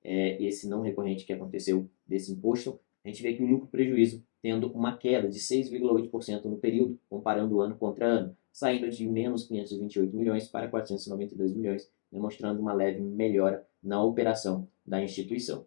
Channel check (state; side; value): silent; right; digital silence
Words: esse não recorrente que aconteceu desse imposto, a gente vê que o lucro prejuízo tendo uma queda de 6,8% no período, comparando ano contra ano, saindo de menos 528 milhões para 492 milhões, demonstrando uma leve melhora na operação da instituição.